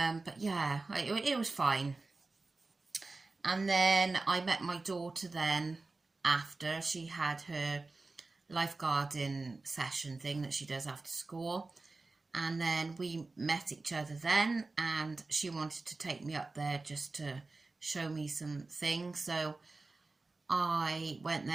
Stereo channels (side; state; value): left; quieter; 3.5 dB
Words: yeah, it was fine. And then I met my daughter then after she had her lifeguarding session thing that she does after school, And then we met each other then, and she wanted to take me up there just to show me some things. So I went